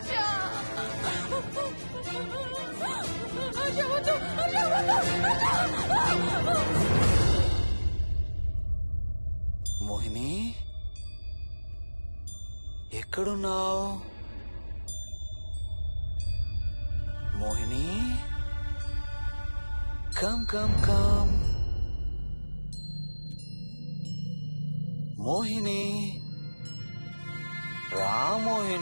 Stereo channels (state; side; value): inverted; both; correlation -1.00